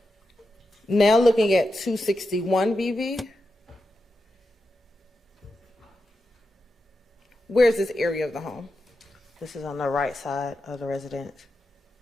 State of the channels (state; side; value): normal; both; correlation 0.89